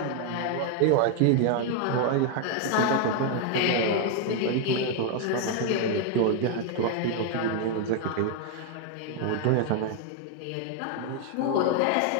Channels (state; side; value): different; both; correlation 0.00